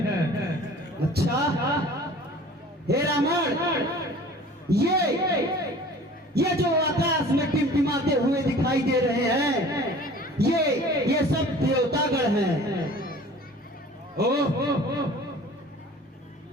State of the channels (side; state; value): both; normal; correlation 0.45